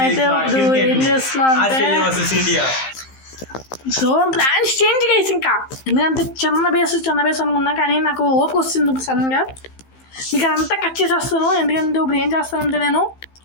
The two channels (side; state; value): right; late; 15 ms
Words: అయితే ఇప్పుడు ఏం చేస్తున్నాం అంటే సో ప్లాన్స్ చేంజ్ గైస్ ఇంకా ఎందుకంటే చిన్న బేస్ అనుకున్నా కానీ నాకు ఓపిక వస్తుంది ఇప్పుడు సడన్గా మీకు అదంతా కట్ చేసేస్తాను ఎందుకంటే ఇప్పుడు ఏం చేస్తానంటే నేను